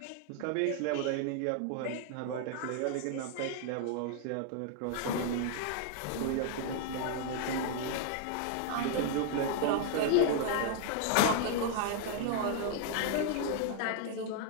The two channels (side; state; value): both; different; correlation 0.00